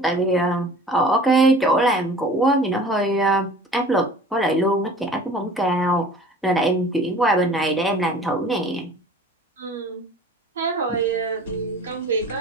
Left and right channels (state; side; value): normal; both; correlation 0.45